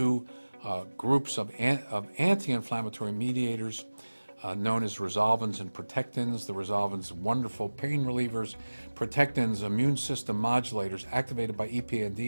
groups of anti-inflammatory mediators known as resolvins and protectins. The resolvins, wonderful pain relievers. Protectins, immune system modulators, activated by EPA and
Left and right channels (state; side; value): inverted; both; correlation -1.00